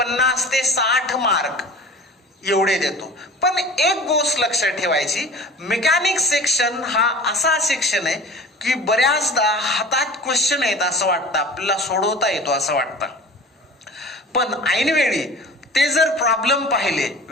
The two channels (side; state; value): both; normal; correlation 0.40